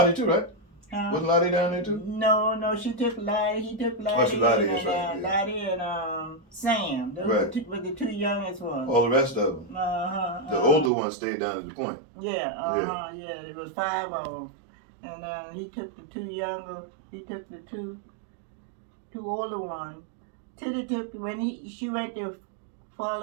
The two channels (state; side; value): drops out; left; at 10.9 s